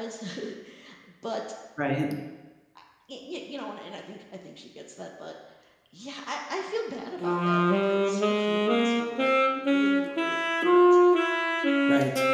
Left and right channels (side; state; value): both; identical; correlation 1.00